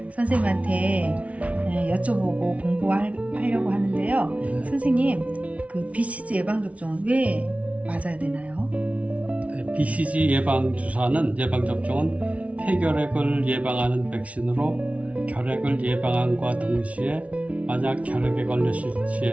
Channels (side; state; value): left; late; 0.065 ms